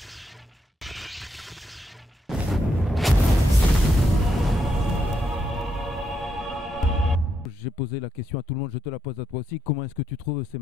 posé la question à tout le monde, je te la pose à toi aussi. Comment est-ce que tu trouves ces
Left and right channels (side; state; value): both; normal; correlation 0.79